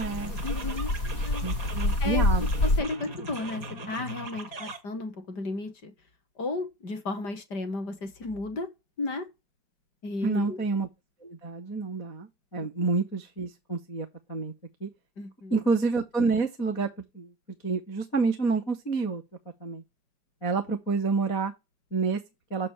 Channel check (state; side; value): late; right; 4.8 ms